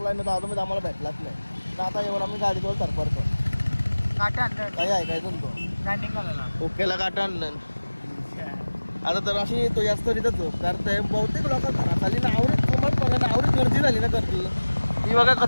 ना तर अजून आम्हाला भेटलाच नाही. तर आता येऊन आम्ही गाडीवर सरपडतो. काही ऐकायचं तो ओकेला काटा आणलं. आता तर अशी तो जास्त तिथं झोप करताय. बहुतेक लोक घरात आली ना आवडत कोमट आवडत गर्दी झाली ना गर्दी. ही बघा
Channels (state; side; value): inverted; both; correlation -1.00